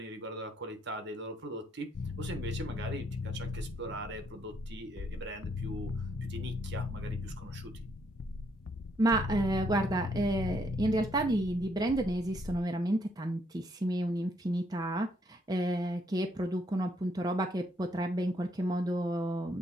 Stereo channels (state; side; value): normal; both; correlation 0.71